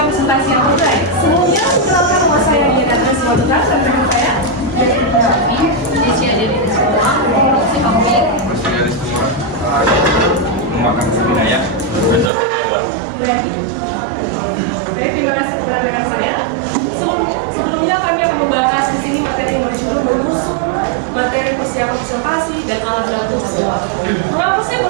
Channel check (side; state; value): left; drops out; at 12.3 s